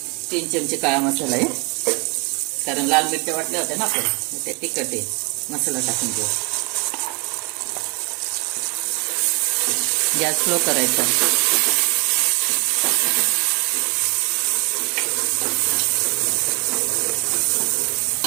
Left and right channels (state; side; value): quieter; left; 31.5 dB